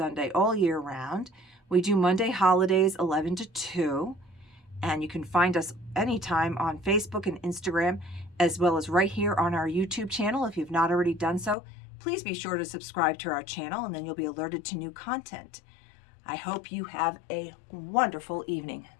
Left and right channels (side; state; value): right; drops out; at 11.6 s